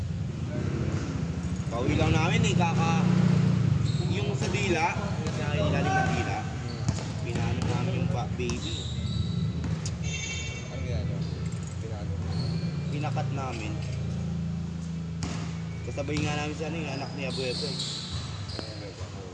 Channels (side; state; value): both; identical; correlation 1.00